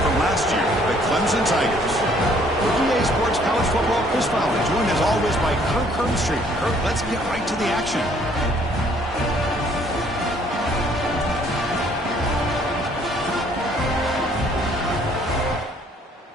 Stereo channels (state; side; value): normal; both; correlation 0.62